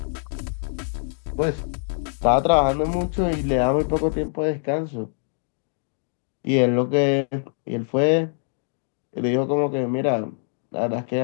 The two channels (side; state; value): right; silent; 63 dB below the other